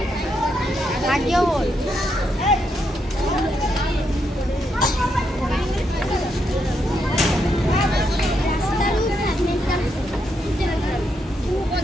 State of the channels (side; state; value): both; normal; correlation 0.79